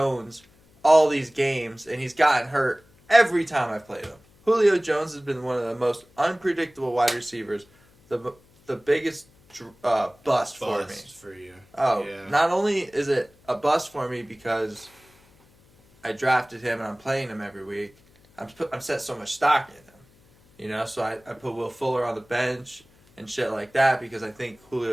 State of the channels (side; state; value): left; noise; hum, 30 dB below the sound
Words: all these games and he's gotten hurt every time I've played him. Julio Jones has been one of the most unpredictable wide receivers. The biggest bust for me. For you. Oh, Yeah. not only is it a bust for me because I drafted him and I'm playing him every week, I'm set so much stock in him. You know, so I put Will Fuller on the bench and shit like that because I think